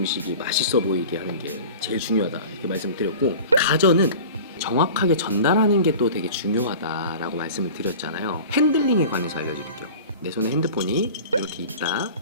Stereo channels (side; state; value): both; inverted; correlation -0.38